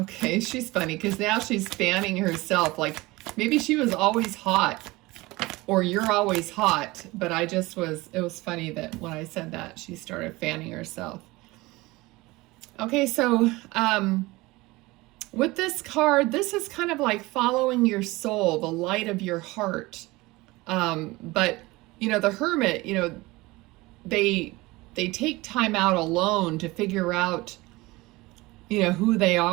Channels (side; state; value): left; quieter; 21.3 dB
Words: she's funny because now she's fanning herself. Like maybe she was always hot, or you're always hot, but it was funny that when I said that, she started fanning herself. Okay, so with this card, this is kind of like following your soul, the light of your heart. But, the hermit, they take time out alone to figure out, who they